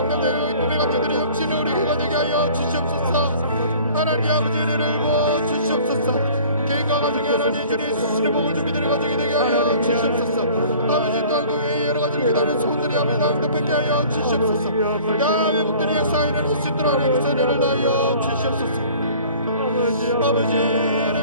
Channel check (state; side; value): inverted; both; correlation -0.49